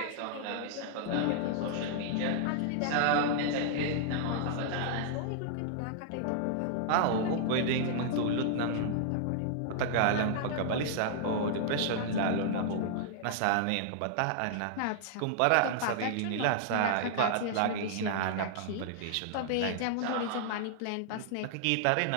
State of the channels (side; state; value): both; different; correlation -0.01